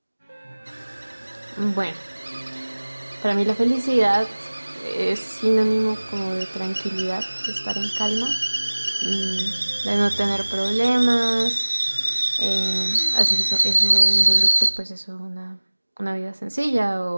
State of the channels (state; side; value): inverted; both; correlation -1.00